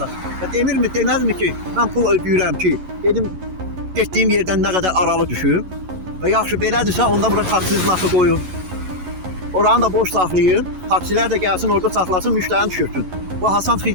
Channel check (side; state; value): left; late; 11 ms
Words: Və demirmi, deməzmi ki, mən pul ödəyirəm ki, dedim getdiyim yerdən nə qədər aralı düşüm. Və yaxşı belədirsə, onda bura taksi znakı qoyun. Oranı da boş saxlayın. Taksilər də gəlsin, orada saxlasın, müştərini düşürsün. Bu Hasan